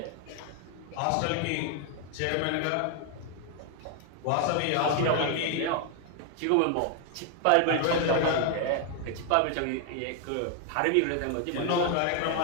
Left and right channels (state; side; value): different; both; correlation 0.00